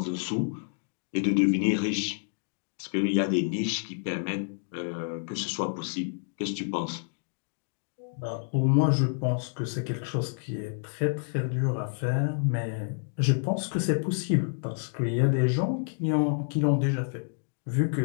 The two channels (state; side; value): silent; right; digital silence